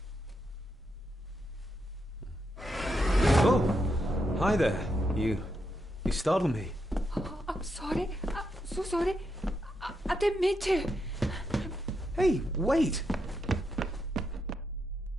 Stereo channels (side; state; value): both; normal; correlation 0.82